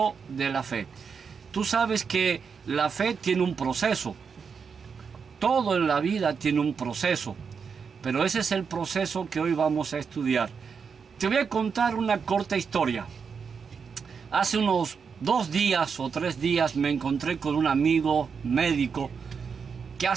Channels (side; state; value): left; quieter; 6.0 dB